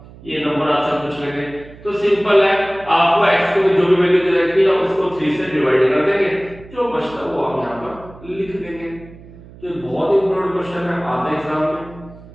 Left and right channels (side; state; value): right; noise; hum, 20 dB below the sound